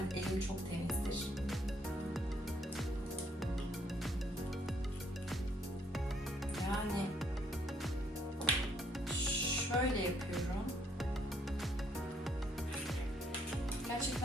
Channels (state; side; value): normal; both; correlation 0.68